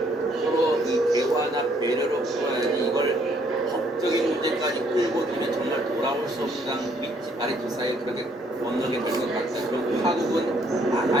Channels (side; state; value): both; normal; correlation 0.66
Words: 이 대화나 배려로 풀어야지 이걸 법적인 문제까지 끌고 들면 정말 돌아올 수 없는 윗집 말이 그 사이에 그렇게 건너게 될 것 같다. 그럼 파국은